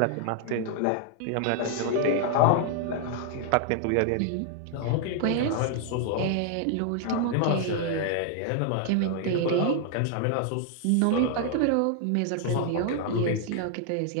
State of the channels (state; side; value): different; both; correlation 0.00